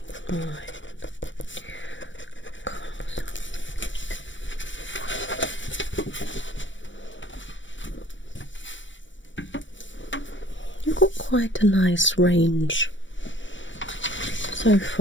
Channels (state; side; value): late; right; 0.55 ms